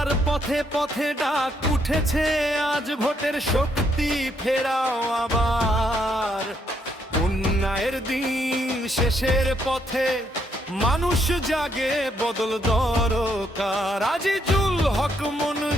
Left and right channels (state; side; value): normal; both; correlation 0.73